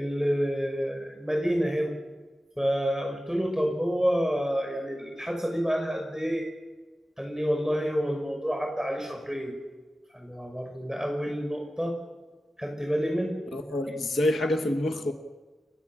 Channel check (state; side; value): normal; both; correlation 0.94